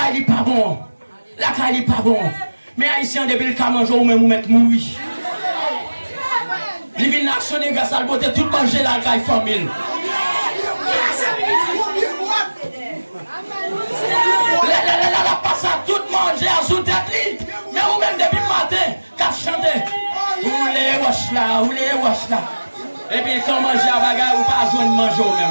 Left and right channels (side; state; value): both; inverted; correlation -1.00